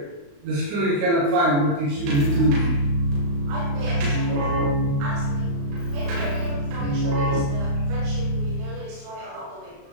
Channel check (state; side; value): late; left; 35 ms